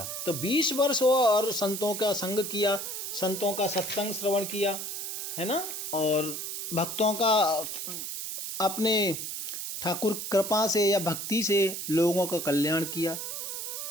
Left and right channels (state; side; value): noise; right; hiss, 5 dB below the sound